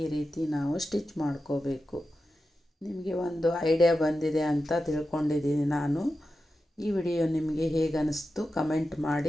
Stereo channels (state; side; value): normal; both; correlation 0.91